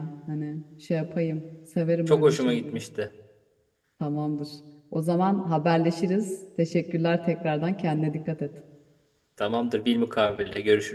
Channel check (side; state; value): both; identical; correlation 1.00